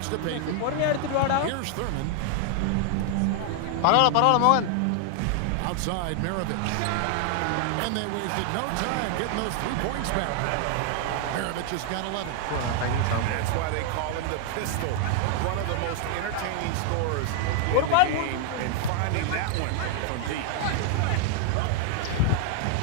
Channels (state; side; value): different; both; correlation 0.00